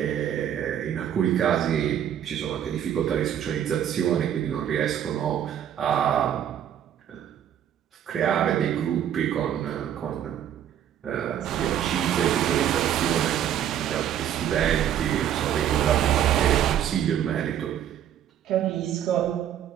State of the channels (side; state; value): left; quieter; 10.2 dB